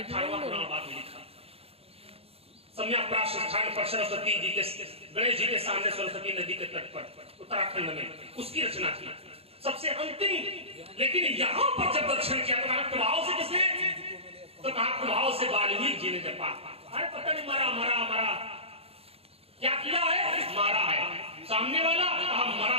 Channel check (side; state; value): left; late; 0.29 ms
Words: सम्यक प्राप्त स्थान पर सरस्वती जी के गणेश जी के सामने सरस्वती नदी के तट पर उत्तराखंड में उसकी रचना की सबसे अंतिम। लेकिन यहाँ पर जब दर्शन किया तो प्रभाव से किसने, तो कहा प्रभाव से वाल्मीकि जी ने जपा। अरे पता नहीं मरा मरा मरा, क्या किया है, मारा है। सामने वाला कहा मरा